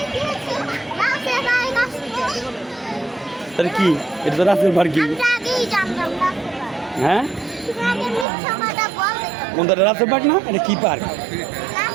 তাহলে কি এটা তো রাতের বার কি, হ্যাঁ কোনটা রাতের পার্ক না, এটা কি পার্ক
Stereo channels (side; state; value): left; drops out; at 8.2 s